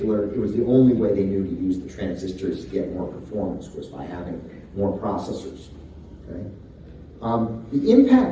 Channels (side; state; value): both; identical; correlation 1.00